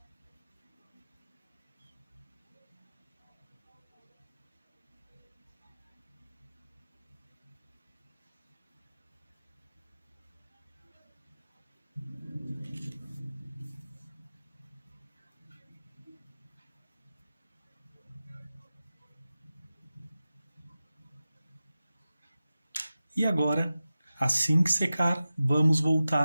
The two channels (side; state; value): both; inverted; correlation -0.95